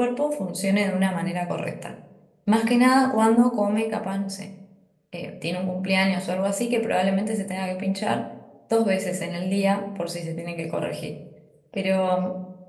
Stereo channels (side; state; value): both; identical; correlation 1.00